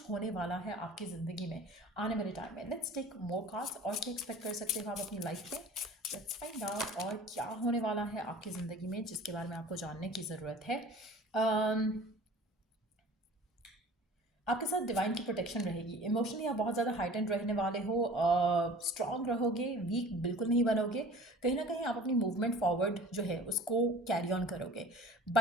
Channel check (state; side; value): normal; both; correlation 0.44